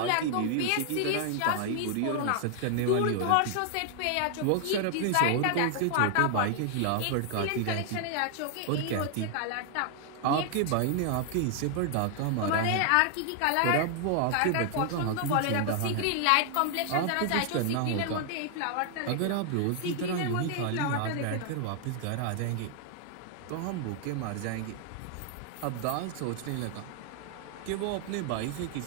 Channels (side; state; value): both; different; correlation 0.00